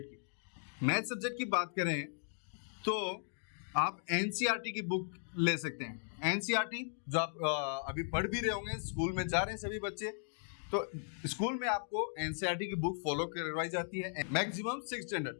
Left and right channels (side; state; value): right; silent; digital silence